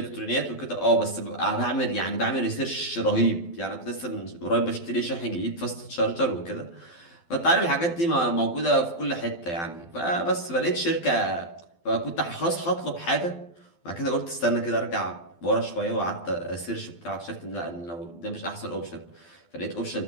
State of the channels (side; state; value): right; late; 12 ms